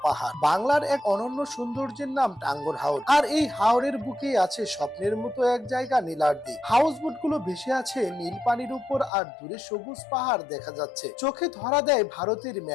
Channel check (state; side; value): drops out; right; at 9.1 s